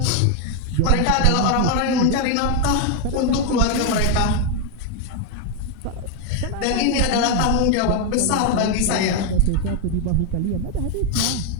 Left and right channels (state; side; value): different; both; correlation 0.01